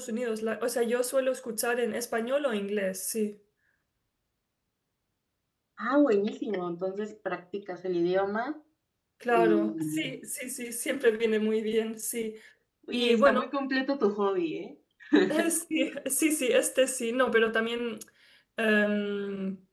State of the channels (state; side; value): identical; both; correlation 1.00